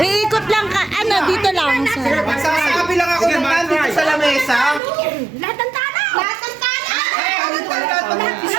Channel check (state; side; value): drops out; left; at 4.8 s